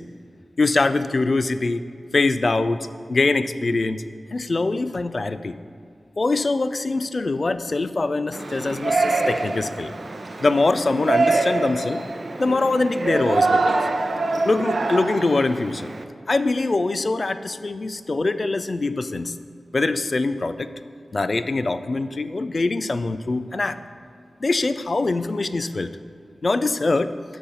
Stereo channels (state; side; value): normal; both; correlation 0.95